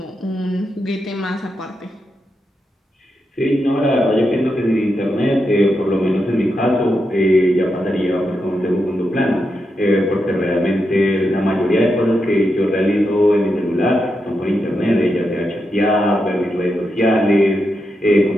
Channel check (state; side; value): normal; both; correlation 0.85